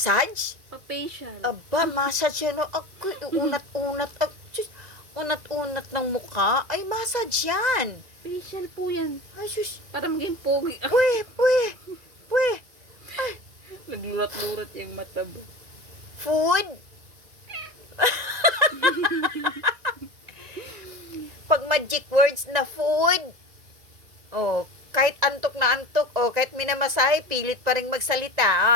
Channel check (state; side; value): late; left; 2.0 ms